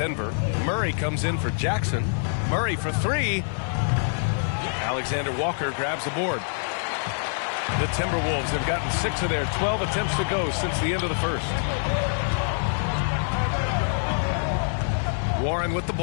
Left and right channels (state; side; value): silent; right; 58 dB below the other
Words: Murray comes in for Jackson. Murray for 3. Alexander Walker grabs the board. The Timberwolves have gotten 6 of their 12 attempts to go since the end of the first. Warren with the